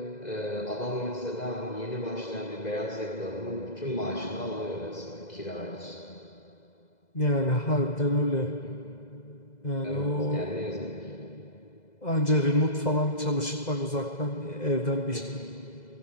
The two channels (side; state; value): right; late; 2.0 ms